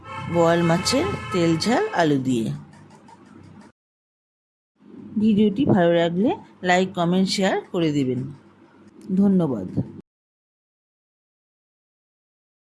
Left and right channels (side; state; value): both; identical; correlation 1.00